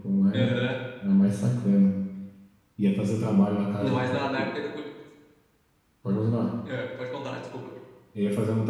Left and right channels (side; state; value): both; identical; correlation 1.00